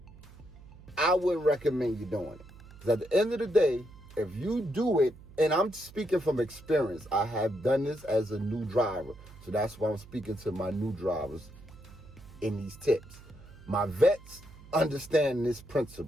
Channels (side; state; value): right; noise; hum, 20 dB below the sound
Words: I wouldn't recommend you doing it. Because at the end of the day, if you do it, and I'm speaking from experience, I have done this as a new driver. So that's why I'm speaking to my new drivers in these tips. My vets understand this